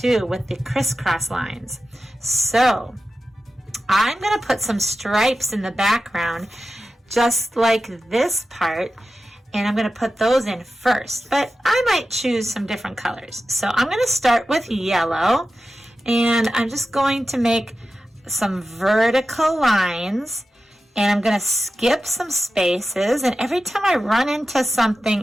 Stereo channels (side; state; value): both; normal; correlation 0.93